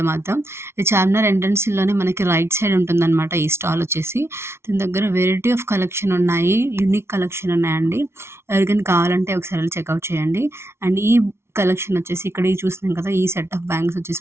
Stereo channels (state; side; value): late; left; 0.12 ms